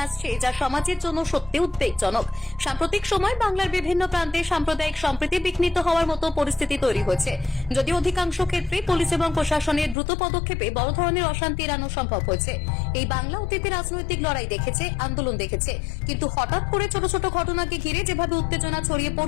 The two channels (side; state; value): right; drops out; at 10.0 s